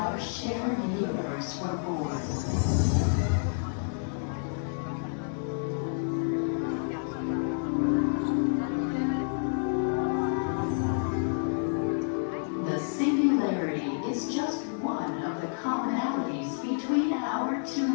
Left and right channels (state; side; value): silent; right; digital silence